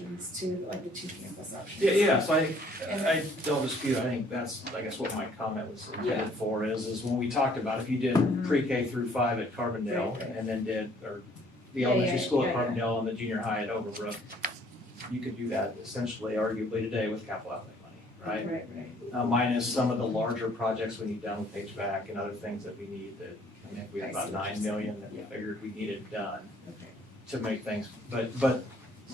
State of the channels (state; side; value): normal; both; correlation 0.60